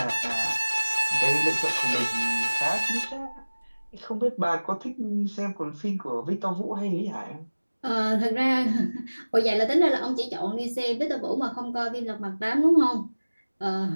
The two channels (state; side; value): inverted; both; correlation -1.00